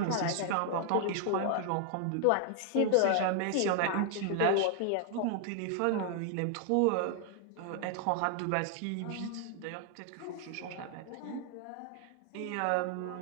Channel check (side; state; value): both; different; correlation 0.00